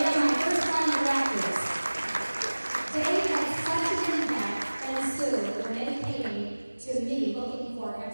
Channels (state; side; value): inverted; both; correlation -1.00